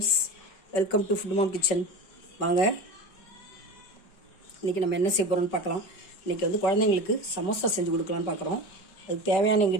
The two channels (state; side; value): late; right; 5.2 ms